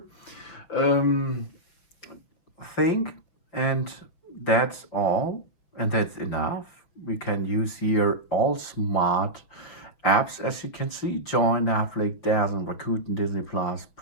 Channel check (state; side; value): late; right; 6.1 ms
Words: thing, and that's all, and that's enough. We can use here all smart apps, as you can see: Join, Netflix, Dazzle, Rakuten, Disney Plus,